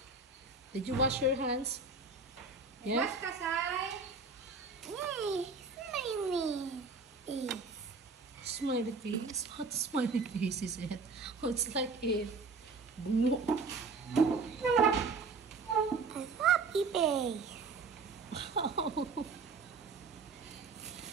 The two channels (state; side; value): quieter; left; 4.2 dB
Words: Did you wash your hands? Yeah? Wash ka, Sai. Yay, smiley. Smiley face? What smiley face is it? Oh, it's like a bungo. A happy face.